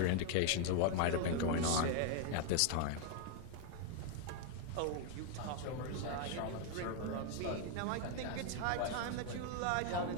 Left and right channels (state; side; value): different; both; correlation 0.00